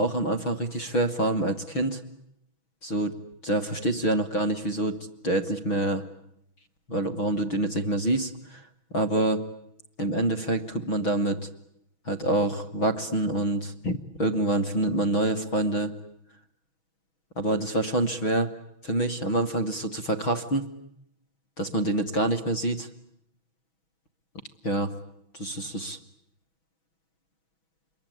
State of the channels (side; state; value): right; late; 6.2 ms